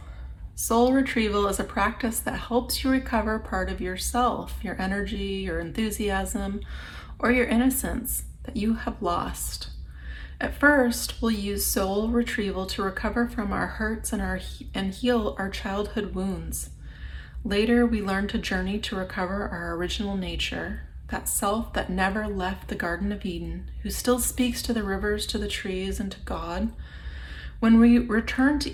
Soul retrieval is a practice that helps you recover part of yourself, your energy, your enthusiasm, or your innocence that you have lost. At first, we'll use soul retrieval to recover from our hurts and heal our childhood wounds. Later, we learn to journey to recover our original nature, that self that never left the Garden of Eden, who still speaks to the rivers, to the trees, and to God. When we return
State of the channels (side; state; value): both; identical; correlation 1.00